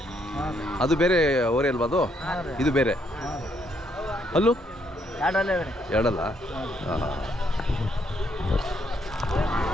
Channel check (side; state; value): both; normal; correlation 0.73